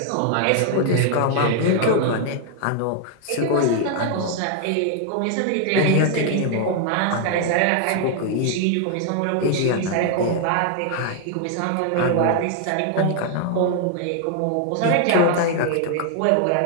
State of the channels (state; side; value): different; both; correlation 0.00